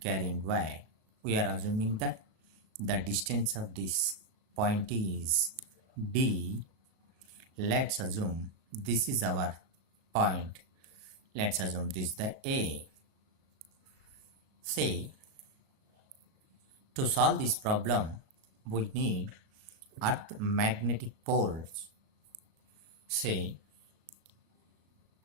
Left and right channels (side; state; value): left; late; 37 ms